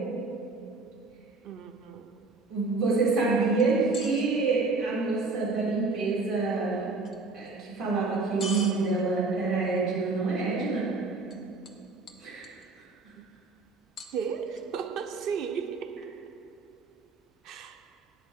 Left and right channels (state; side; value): quieter; left; 3.7 dB